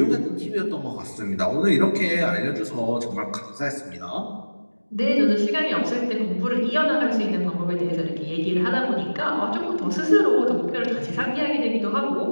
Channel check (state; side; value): inverted; both; correlation -1.00